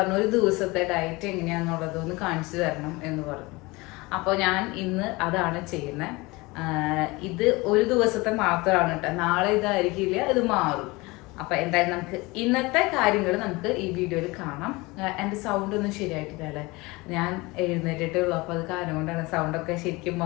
ഒരു ദിവസത്തെ ഡയറ്റ് എങ്ങനെയാണെന്നുള്ളതൊന്ന് കാണിച്ചു തരണം എന്ന് പറഞ്ഞു. അപ്പോൾ ഞാൻ ഇന്ന് അതാണ് ചെയ്യുന്നത്. ഇത് ഒരു ദിവസത്തെ മാത്രമാണ് കേട്ടോ, നാളെ ഇതായിരിക്കില്ല, ഇത് മാറും. അപ്പൊ എന്തായാലും നമുക്ക് ഇന്നത്തെ കാര്യങ്ങൾ നമുക്ക് ഈ വീഡിയോയിൽ കാണാം. എൻ്റെ സൗണ്ട് ഒന്നും ശരിയായിട്ടില്ല അല്ലേ, ഞാൻ എഴുന്നേറ്റിട്ടേ ഉള്ളൂ, അപ്പൊ അത് കാരണം കൊണ്ടാണ് സൗണ്ടൊക്കെ ശരിക്കും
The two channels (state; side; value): quieter; right; 23.3 dB